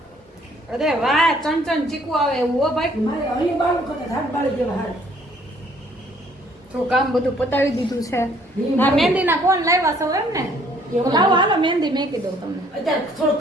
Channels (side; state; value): both; normal; correlation 0.61